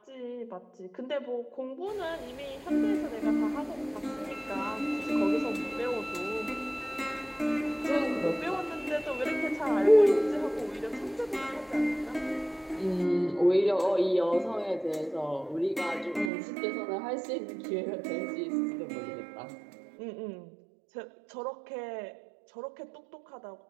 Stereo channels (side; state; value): left; drops out; at 16.3 s